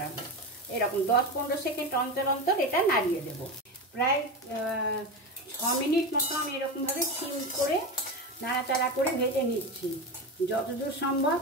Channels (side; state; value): both; normal; correlation 0.20